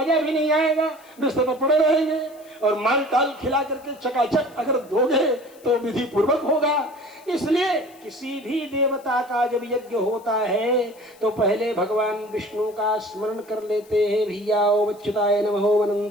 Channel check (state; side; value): noise; left; hiss, 27 dB below the sound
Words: भी नहीं आएगा, बिस्तर पर पड़े रहेंगे। और माल टाल खिला करके चकाचक अगर दोगे तो विधि पूर्वक होगा। इसलिए किसी भी देवता का जब यज्ञ होता है तो पहले भगवान विष्णु का स्मरण कर लेते हैं। भैया ओम अच्युताय नमः, ओम